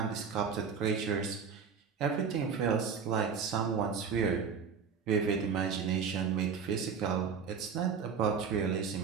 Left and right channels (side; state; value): left; quieter; 6.2 dB